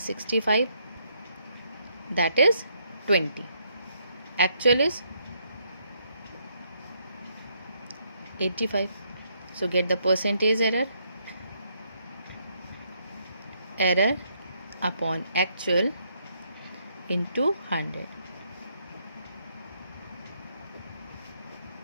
65, that is 20. Actual is 85. So get the percentage error. Error upon actual into 100.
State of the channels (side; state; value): both; inverted; correlation -0.73